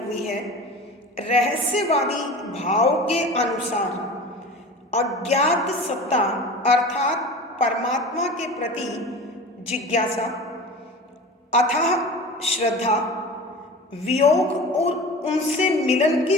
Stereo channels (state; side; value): normal; both; correlation 0.35